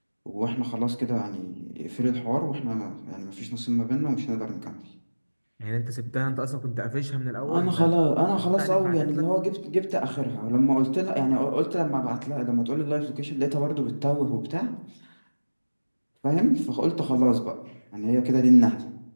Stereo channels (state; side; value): inverted; both; correlation -1.00